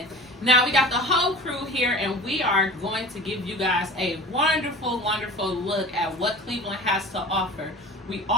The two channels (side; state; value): both; normal; correlation 0.38